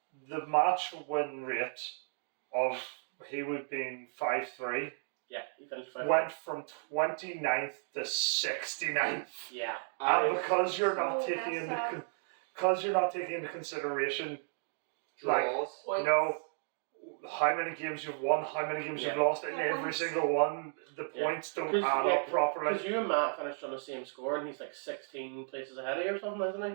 the match win rate of he would been 5-3 Yeah, he finished 5th. went from 29th to 69th. Yeah. And because you're not So taking messed into consideration, like Draws. Points. no, how many games you've won, how many games you've lost, and Yeah, every points. single one, the points don't add up properly. Because you and Matt finished on the same score, and he's like 16 places ahead of you or something, isn't he?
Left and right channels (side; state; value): left; silent; 55 dB below the other